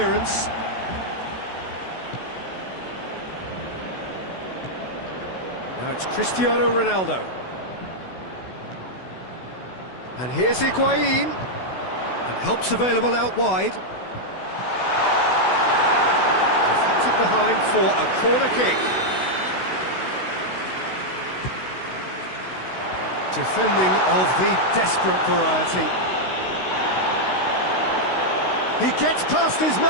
Now it's Cristiano Ronaldo. And here's Higuain. And help's available out wide. Deflected behind for a corner kick. Defending of the desperate variety. He gets past his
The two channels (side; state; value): right; late; 16 ms